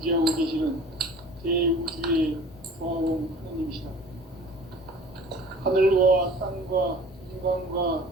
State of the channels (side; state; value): both; normal; correlation 0.46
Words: 계시는 대우주의 조화원 하느님이시다. 하늘과 땅과 인간과